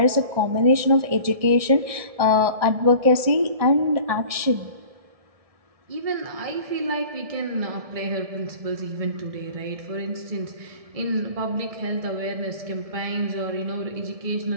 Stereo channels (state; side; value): late; left; 1.7 ms